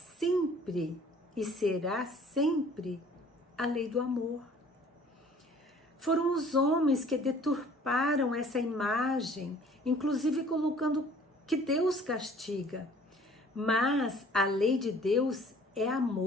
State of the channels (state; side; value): normal; both; correlation 0.53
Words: e será sempre a lei do amor. Foram os homens que deturparam essa imagem, inclusive colocando que Deus castiga. Mas a lei de Deus é